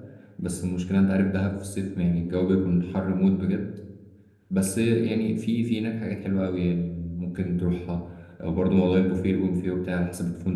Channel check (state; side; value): identical; both; correlation 1.00